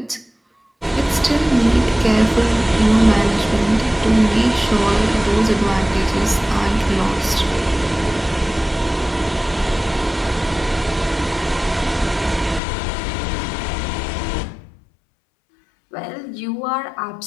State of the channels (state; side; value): drops out; right; at 12.6 s